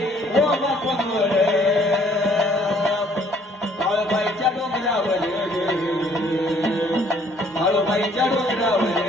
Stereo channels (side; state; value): both; normal; correlation 0.61